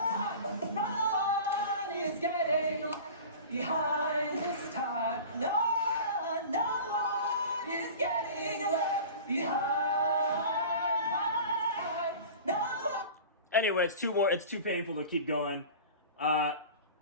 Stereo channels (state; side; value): inverted; both; correlation -0.38